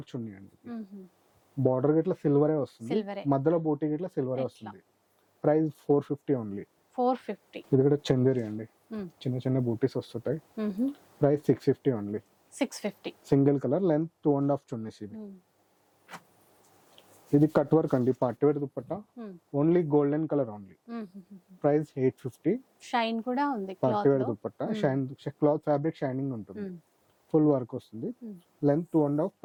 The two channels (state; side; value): identical; both; correlation 1.00